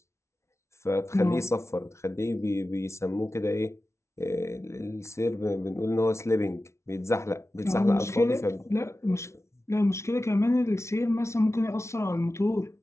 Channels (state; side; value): late; right; 0.13 ms